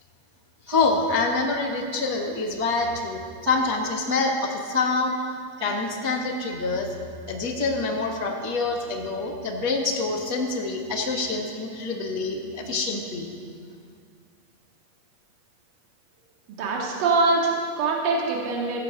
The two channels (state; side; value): late; left; 8.4 ms